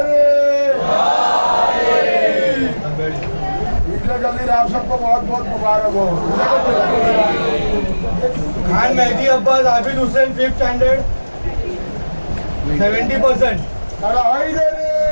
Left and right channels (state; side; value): inverted; both; correlation -1.00